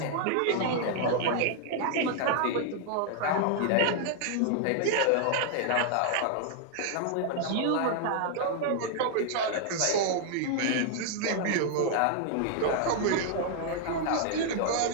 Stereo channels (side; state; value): both; different; correlation 0.00